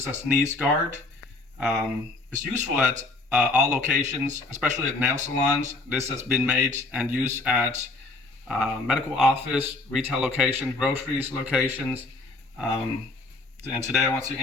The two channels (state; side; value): quieter; right; 3.3 dB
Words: a sneeze guard. It's useful at all locations, especially at nail salons. This has been made and used at medical office, retail locations, groceries locations. And today I want to